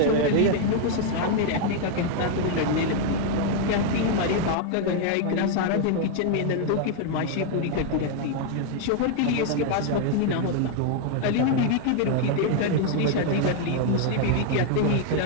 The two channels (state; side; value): different; both; correlation 0.00